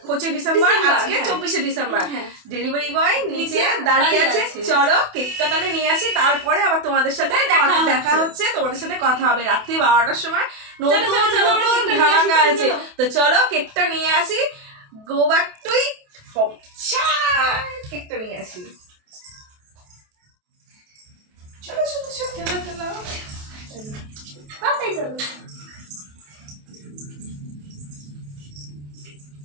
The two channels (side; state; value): left; late; 28 ms